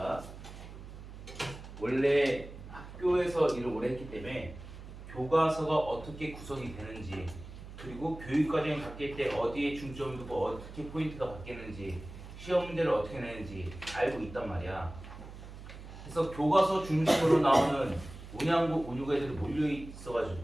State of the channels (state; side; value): noise; right; hum, 14 dB below the sound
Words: 원래 학교에서 일을 오래 했기 때문에 교과서가 어떻게 구성이 되는지 그리고 교육과정이 바뀔 때 어디에 중점을 두고 어떻게 포인트가 바뀌는지 시험 문제를 어떻게 내는지 알고 있단 말이야. 그래서 교과서 중심으로 나오는 운양고, 운유고 애들이 몰려